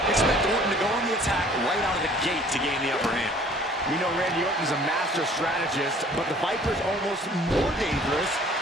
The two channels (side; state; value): both; normal; correlation 0.53